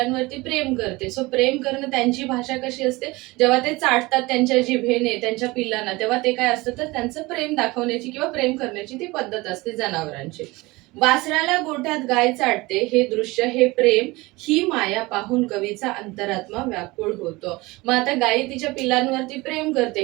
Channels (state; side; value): quieter; left; 22.2 dB